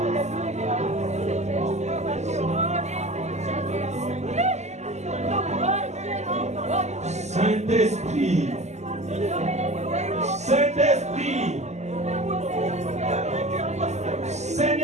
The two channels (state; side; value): late; left; 0.33 ms